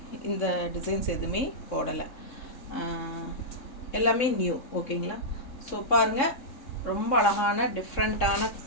இந்த டிசைன்ஸ் எதுவுமே போடலை, எல்லாமே நியூ. ஓகேங்களா, ஸோ பாருங்கள், ரொம்ப அழகான டிஃப்ரெண்ட்டான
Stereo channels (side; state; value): right; late; 3.6 ms